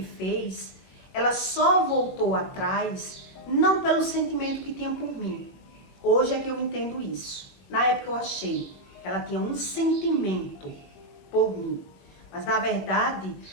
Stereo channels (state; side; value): late; right; 21 ms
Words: fez, ela só voltou atrás, não pelo sentimento que tinha por mim. Hoje é que eu entendo isso. Na época eu achei que ela tinha um sentimento por mim. Mas, na verdade,